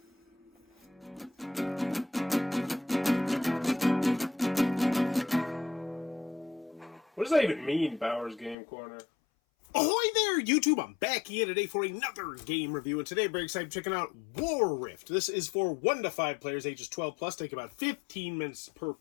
what does that even mean, Bowers Game Corner? Ahoy there, YouTube! I'm back here today for another game review, and today I'm very excited checking out WarRift. This is for 1 to 5 players, ages 12 plus, take about 15 minutes per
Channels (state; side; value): drops out; right; at 8.6 s